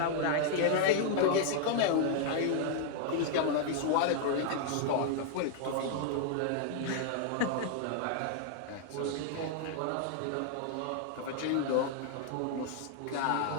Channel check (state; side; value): different; both; correlation -0.01